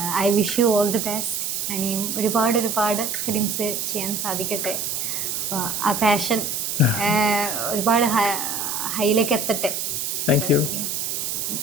I wish you all the best. ഇനിയും ഒരുപാട് ഫിലിംസ് ചെയ്യാൻ സാധിക്കട്ടെ. അപ്പോൾ ആ പാഷൻ ഒരുപാട് ഹൈയിലേക്ക് എത്തട്ടെ. Thank you.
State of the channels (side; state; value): right; noise; hiss, 2 dB below the sound